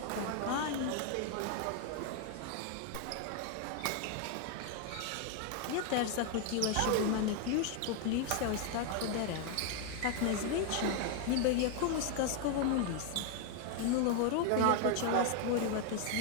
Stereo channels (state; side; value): different; both; correlation 0.00